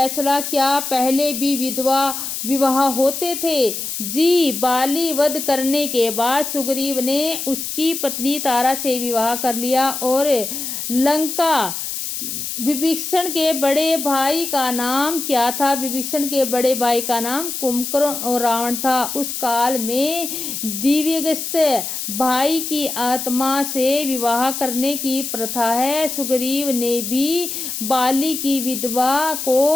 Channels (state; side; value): noise; left; hiss, 5 dB below the sound